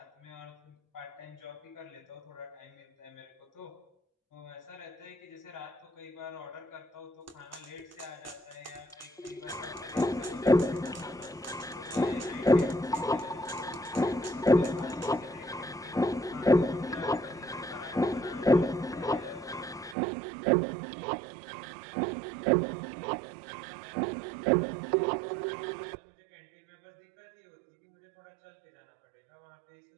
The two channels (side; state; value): left; drops out; at 20.0 s